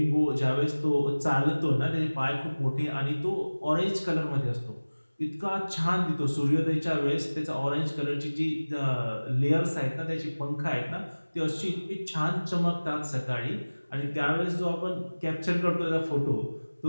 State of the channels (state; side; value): inverted; both; correlation -1.00